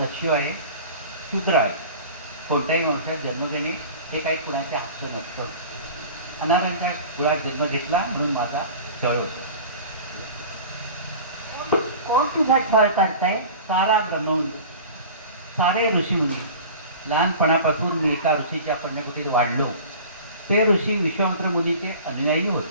आहे, शूद्र आहे. कोणत्याही वंशात जन्म घेणे हे काही कुणाचे हक्क नसतं. अनारांच्या कुळात जन्म घेतला म्हणून माझा छळ होतो. कोण तुझा छळ करताय? सारा ब्रह्मवंत, सारे ऋषीमुनी. लहानपणापासून मी एका ऋषीच्या पुण्यकुटीत वाढलो. ते ऋषी विश्वामित्र मुनीचे अनुयायी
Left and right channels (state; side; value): inverted; both; correlation -0.38